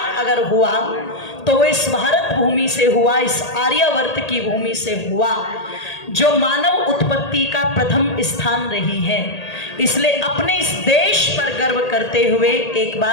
अगर हुआ तो वो इस भारत भूमि से हुआ, इस आर्यावर्त की भूमि से हुआ जो मानव उत्पत्ति का प्रथम स्थान रही है। इसलिए अपने इस देश पर गर्व करते हुए एक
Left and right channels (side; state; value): right; late; 1.8 ms